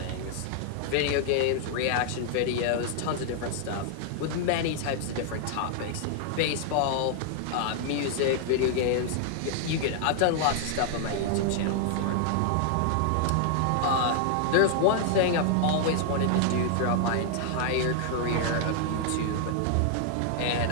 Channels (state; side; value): different; both; correlation -0.01